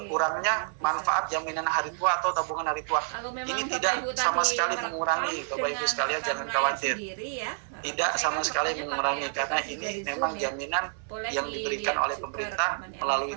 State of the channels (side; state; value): left; silent; 58 dB below the other